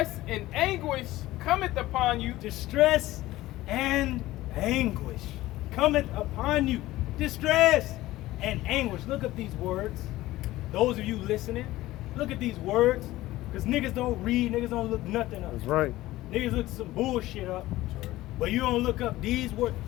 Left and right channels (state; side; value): quieter; right; 16.8 dB